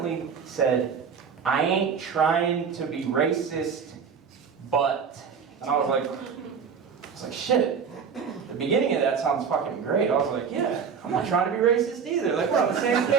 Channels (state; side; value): quieter; left; 6.4 dB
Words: said, I ain't trying to be racist, but, and I was like, shit. The beginning of that sounds fucking great. I was like, yeah, I'm not trying to be racist either. Like, we're on the same